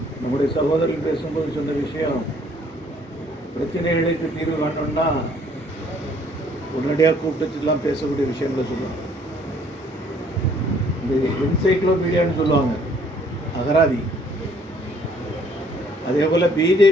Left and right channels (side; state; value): both; normal; correlation 0.61